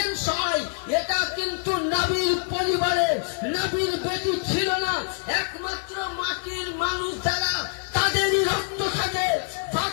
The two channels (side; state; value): right; silent; digital silence